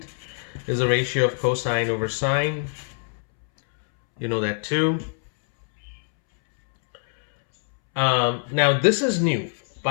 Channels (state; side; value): silent; right; 63 dB below the other